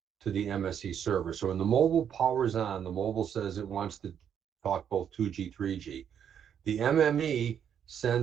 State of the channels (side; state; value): left; quieter; 8.6 dB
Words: to the MSE server. So when the mobile powers on, the mobile says it wants to talk both 2G, 3G. The MME